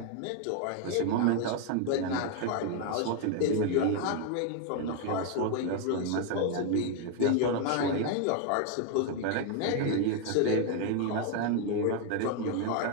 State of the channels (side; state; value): both; different; correlation 0.00